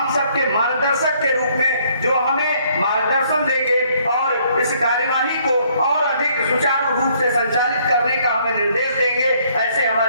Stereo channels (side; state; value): both; inverted; correlation -0.65